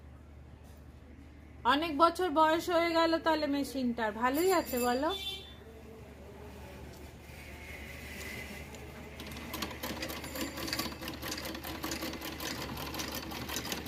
অনেক বছর বয়স হয়ে গেল তাহলে মেশিনটার। ভালোই আছে বলো।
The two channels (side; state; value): both; identical; correlation 1.00